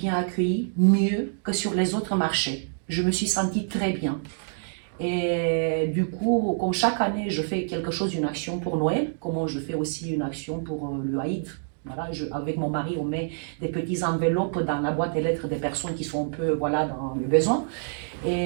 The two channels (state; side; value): silent; left; digital silence